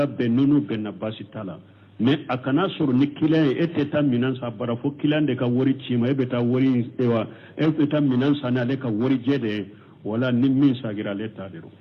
be nunu be na basitala mais akana sur ni kilan eteta minansa bara fo kilan de ka wori chima ebeta wori ewa ebeta minansa na le ka wori jede wala ni min sagira le tadero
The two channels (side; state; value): both; identical; correlation 1.00